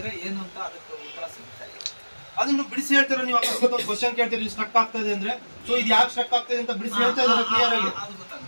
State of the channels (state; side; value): inverted; both; correlation -1.00